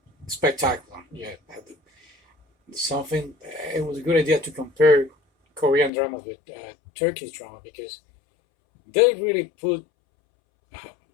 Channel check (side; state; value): right; drops out; at 5.9 s